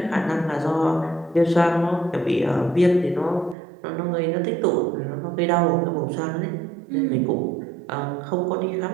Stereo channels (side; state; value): left; drops out; at 3.6 s